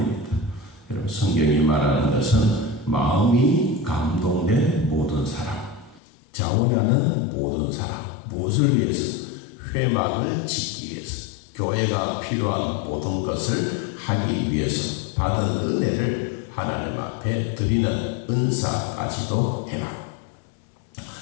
여러분, 성경이 말하는 것은 마음이 감동된 모든 사람, 자원하는 모든 사람, 무엇을 위해서? 회막을 짓기 위해서, 교회가 필요한 모든 것을 하기 위해서 받은 은혜를 하나님 앞에 드리는 은사까지도 해라.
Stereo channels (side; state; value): right; drops out; at 6.0 s